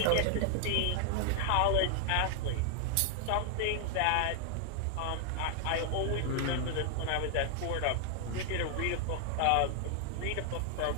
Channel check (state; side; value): different; both; correlation 0.00